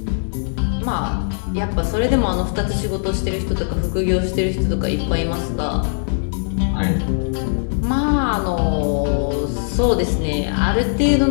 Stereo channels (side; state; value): right; silent; 66 dB below the other